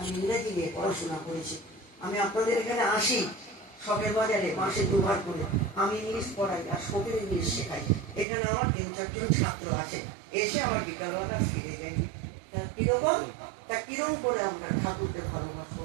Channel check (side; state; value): left; drops out; at 8.2 s